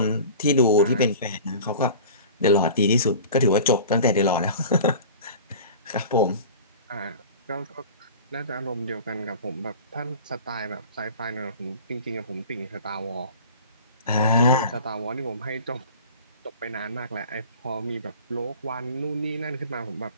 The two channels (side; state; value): both; inverted; correlation -0.40